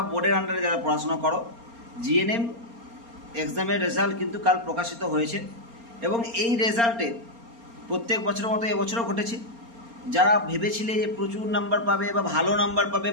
বোর্ডের আন্ডারে যারা পড়াশোনা করো, জিএনএম এক্সামের রেজাল্ট কিন্তু কাল প্রকাশিত হয়েছে। এবং এই রেজাল্টে প্রত্যেক বছরের মতো এবছরও ঘটেছে। যারা ভেবেছিলে যে প্রচুর নাম্বার পাবে বা ভালো নাম্বার পাবে,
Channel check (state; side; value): late; left; 4.3 ms